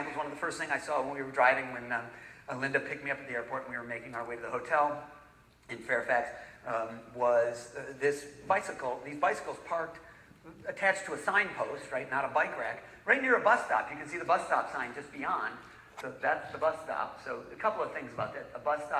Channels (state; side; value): identical; both; correlation 1.00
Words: one of the first things I saw when we were driving, when Linda picked me up at the airport and we were making our way to the hotel in Fairfax, was these bicycles parked attached to a signpost, right, not a bike rack, right near a bus stop. You can see the bus stop sign just beyond. So that's the bus stop. So a couple of things about that. A bus